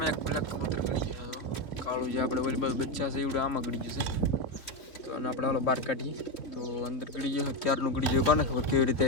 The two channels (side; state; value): right; late; 3.0 ms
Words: એક બ્લેક કબૂતર ગળી ગયું છે તો કાળું જે આપણે ઓલી બાજુ બચ્ચા છે એવડે આમાં ગળી ગયું છે. તો આને આપણે હાલો બહાર કાઢીએ. તો અંદર ગળી ગયો ક્યારનું ગળી ગયું કોને ખબર કેવી રીતે